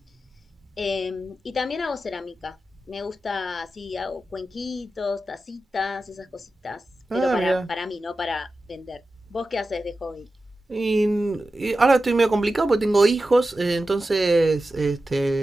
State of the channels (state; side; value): normal; both; correlation 0.93